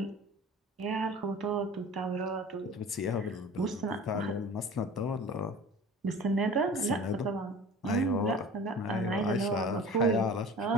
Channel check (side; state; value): both; normal; correlation 0.40